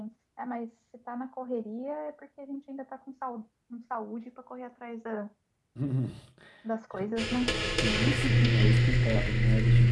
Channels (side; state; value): both; identical; correlation 1.00